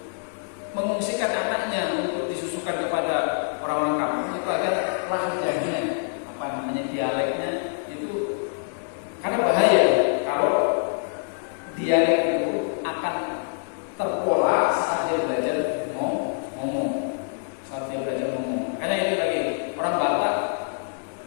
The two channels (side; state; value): right; silent; digital silence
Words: mengungsikan anaknya untuk disusukan kepada orang-orang kampung itu agar lahjahnya, dialeknya itu, karena bahaya kalau dialek itu akan terpola saat dia belajar ngomong. Karena itu lagi orang Batak,